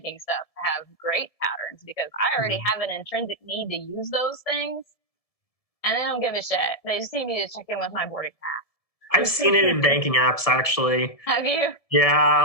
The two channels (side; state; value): right; late; 1.7 ms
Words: stuff have great patterns because I already have an intrinsic need to use those things, and they don't give a shit. They just need me to check in with my boarding pass. I've seen it in banking apps, actually. Have you? Yeah,